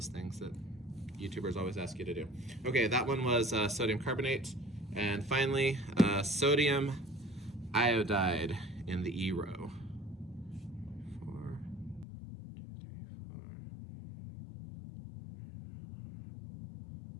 things that YouTubers always ask you to do. Okay, that one was sodium carbonate. And finally, sodium iodide in the E row. 4, 2, 3, 4.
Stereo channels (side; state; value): right; drops out; at 12.1 s